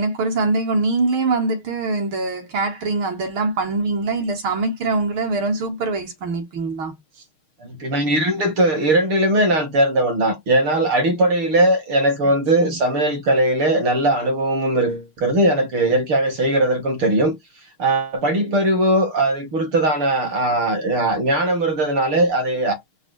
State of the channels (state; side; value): late; left; 6.5 ms